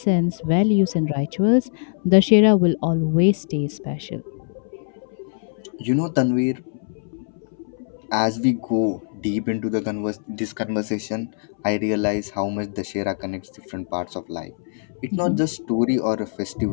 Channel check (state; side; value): silent; right; 63 dB below the other